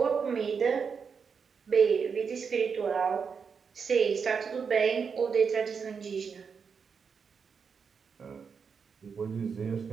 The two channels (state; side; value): quieter; left; 6.0 dB